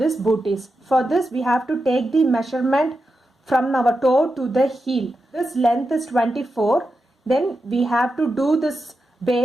booties. For this, we have to take the measurement from our toe to the heel. This length is 24. Then we have to do this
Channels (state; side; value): normal; both; correlation 0.89